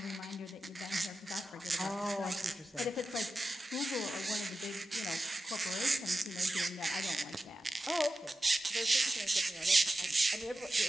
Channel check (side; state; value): both; normal; correlation 0.92